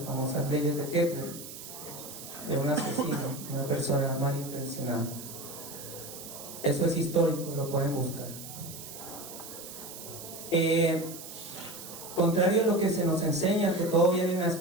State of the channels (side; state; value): right; noise; hiss, 12 dB below the sound